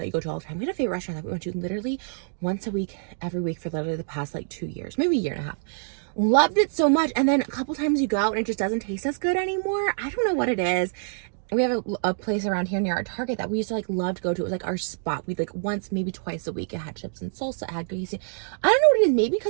you go to all the time? We had a favorite restaurant that we went to literally once a week, every week for literally the past like 2 years, maybe a year and a half. Loved it so much. And then a couple times you go out and it just doesn't taste as good anymore. I don't know what it is. We have a place around here near our Target that we used to like love to go to. It was like our spot. We'd like once, maybe twice a week. It had chips and salsa. It had greasy. I don't know what it is. Maybe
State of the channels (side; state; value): left; silent; digital silence